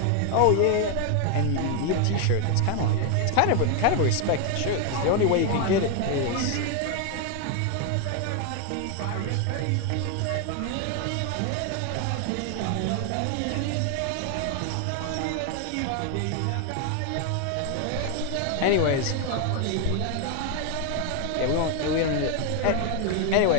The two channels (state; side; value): different; both; correlation 0.01